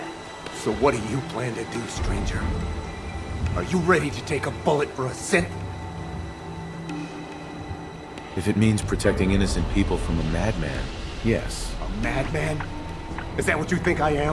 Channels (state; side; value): identical; both; correlation 1.00